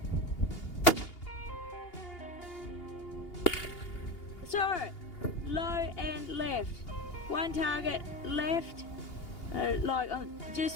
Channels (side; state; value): right; late; 2.8 ms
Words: So, low and left. One target left, like